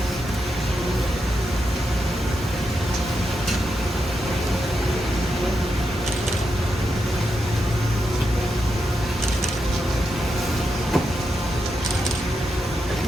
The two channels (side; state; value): both; normal; correlation 0.85